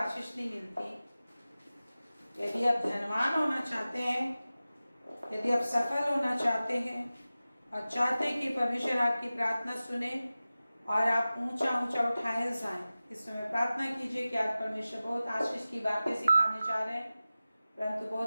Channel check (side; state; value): both; inverted; correlation -0.96